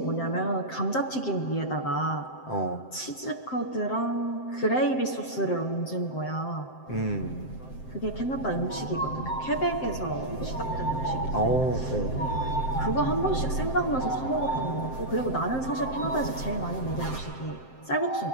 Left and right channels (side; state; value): right; late; 7.7 ms